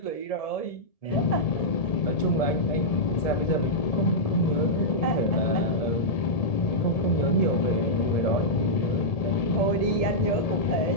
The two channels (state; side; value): late; right; 1.7 ms